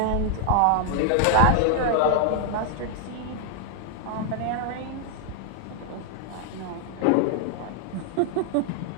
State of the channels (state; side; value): different; both; correlation 0.00